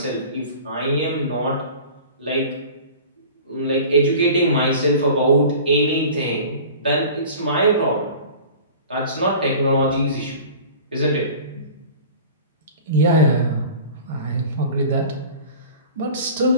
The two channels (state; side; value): inverted; both; correlation -0.41